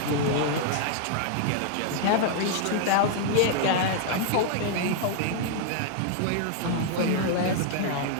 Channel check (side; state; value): both; different; correlation -0.01